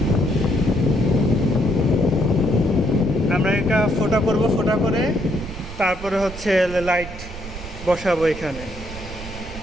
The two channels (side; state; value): right; noise; rumble, 12 dB below the sound